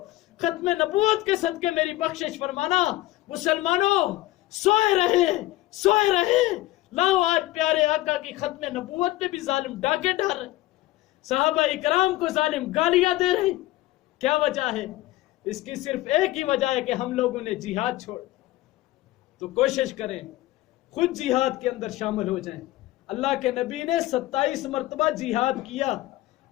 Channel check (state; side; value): quieter; right; 17.1 dB